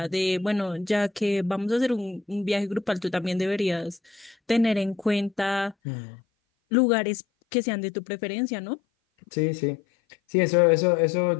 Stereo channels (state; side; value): drops out; right; at 5.8 s